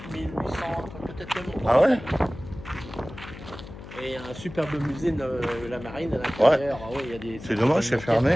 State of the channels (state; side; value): noise; left; hum, 14 dB below the sound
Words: 1800, peut-être même Ah ouais. Et un superbe musée de la marine à l'intérieur. Ah ouais, il y a des. C'est dommage, c'est fermé